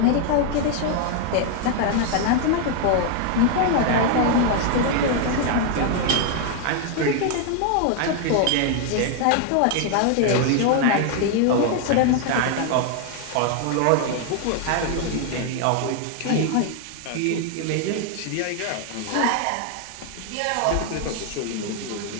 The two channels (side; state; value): both; different; correlation 0.00